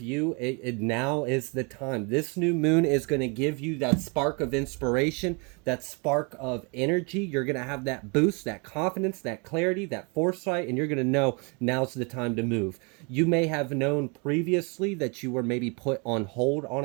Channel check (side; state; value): left; quieter; 32.6 dB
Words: it now is the time. This new moon is going to give you that spark of inspiration, that spark of energy. You're going to have that boost, that confidence, that clarity, that foresight, and you're going to know now's the time to move. You may have known previously that you were maybe put on hold on